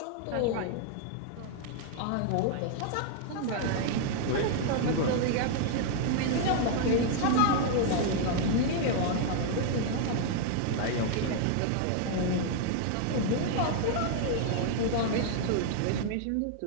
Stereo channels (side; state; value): both; different; correlation 0.00